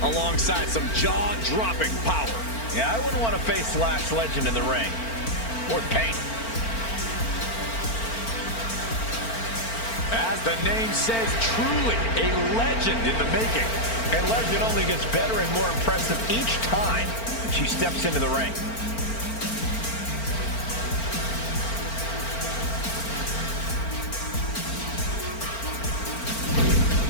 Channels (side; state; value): right; late; 4.4 ms